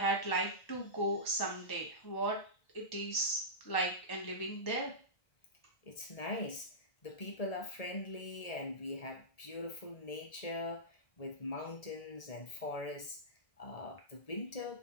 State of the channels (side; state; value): right; late; 1.7 ms